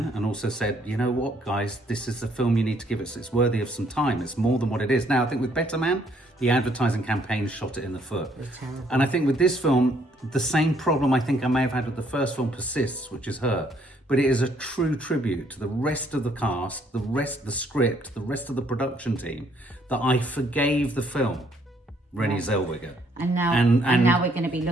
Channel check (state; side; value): normal; both; correlation 0.67